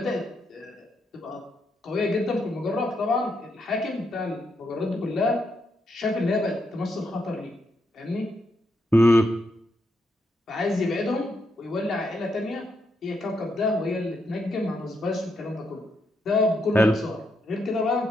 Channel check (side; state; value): both; normal; correlation 0.79